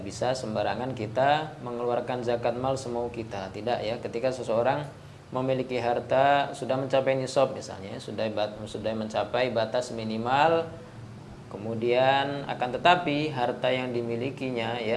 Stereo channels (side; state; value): both; identical; correlation 1.00